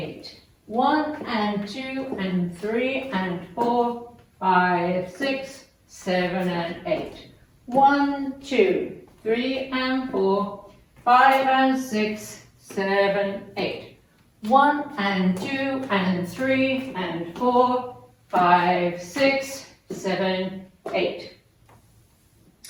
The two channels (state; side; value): identical; both; correlation 1.00